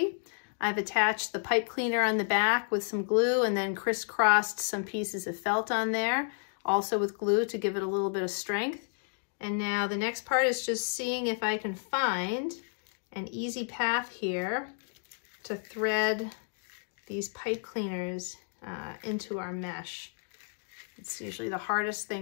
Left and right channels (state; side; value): silent; right; digital silence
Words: I've attached the pipe cleaner on the back with some glue and then crisscrossed some pieces of felt on there, also with glue to give it a little bit of strength. And now the next part is just seeing if I can find an easy path here to thread these pipe cleaners into our mesh. It's usually the hardest